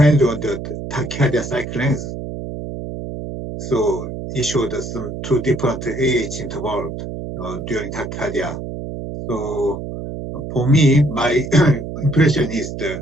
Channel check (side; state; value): right; noise; hum, 7 dB below the sound